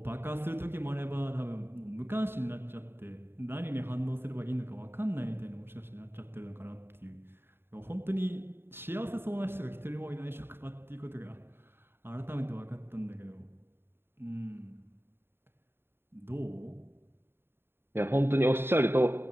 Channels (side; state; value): left; late; 0.11 ms